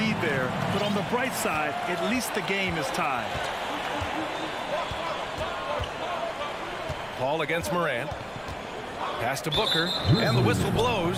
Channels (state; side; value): identical; both; correlation 1.00